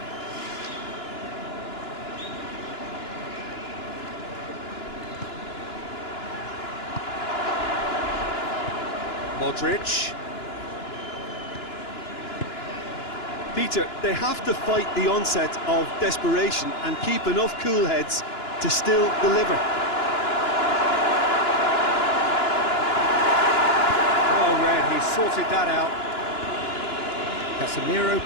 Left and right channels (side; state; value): right; late; 2.9 ms